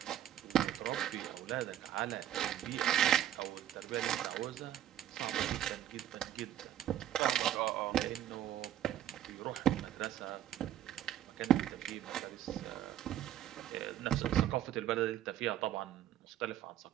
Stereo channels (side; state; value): left; quieter; 11.8 dB